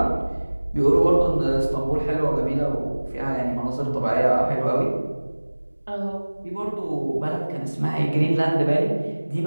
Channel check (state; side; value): inverted; both; correlation -1.00